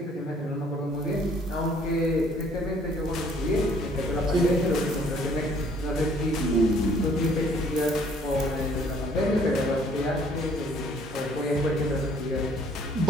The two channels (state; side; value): normal; both; correlation 0.60